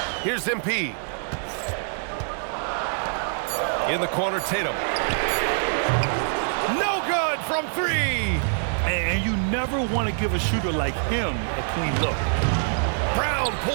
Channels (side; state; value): left; silent; digital silence